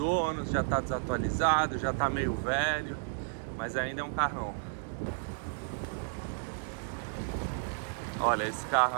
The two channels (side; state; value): left; silent; digital silence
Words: já está desatualizado, já está meio velho, mas ainda é um carrão. Olha, esse